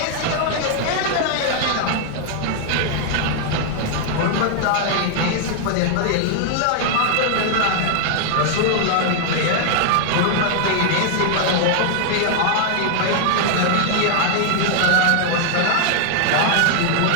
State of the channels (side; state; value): both; different; correlation 0.00